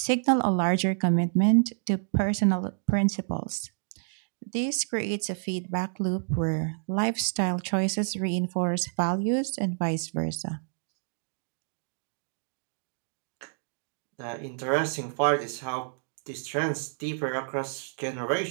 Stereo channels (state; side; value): silent; left; digital silence